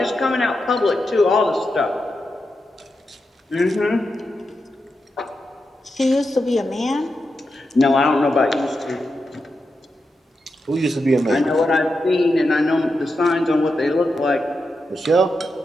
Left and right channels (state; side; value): normal; both; correlation 0.88